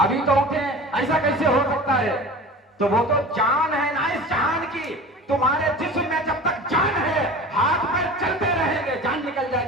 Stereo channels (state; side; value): normal; both; correlation 0.37